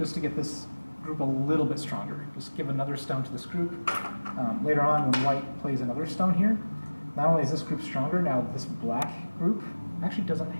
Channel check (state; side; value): inverted; both; correlation -1.00